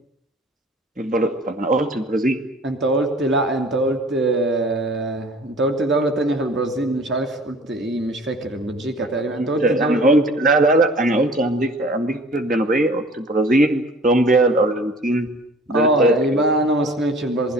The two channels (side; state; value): both; normal; correlation 0.48